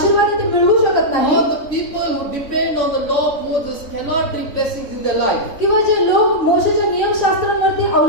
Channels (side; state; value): right; late; 3.9 ms